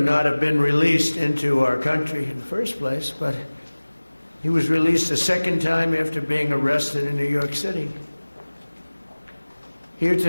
have been released into our country in the first place, but he was released a second time after being arrested in New York City. Here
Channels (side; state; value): both; inverted; correlation -1.00